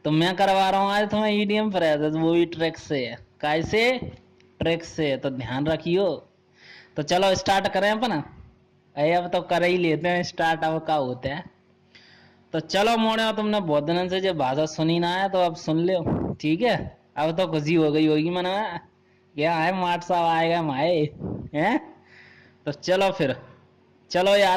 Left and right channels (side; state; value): both; identical; correlation 1.00